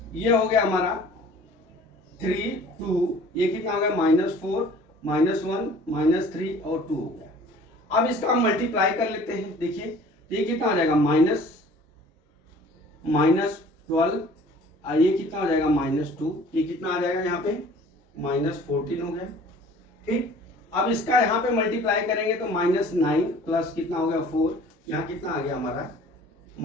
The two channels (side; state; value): both; normal; correlation 0.49